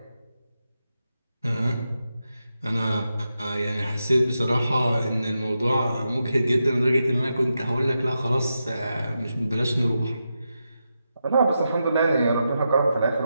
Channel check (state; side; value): inverted; both; correlation -0.87